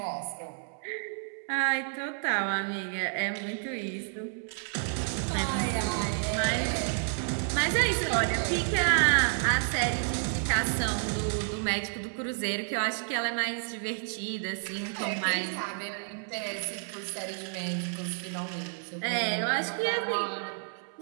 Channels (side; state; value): left; silent; 58 dB below the other